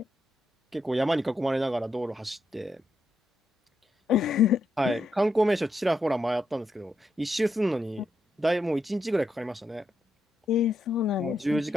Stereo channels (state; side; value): normal; both; correlation 0.83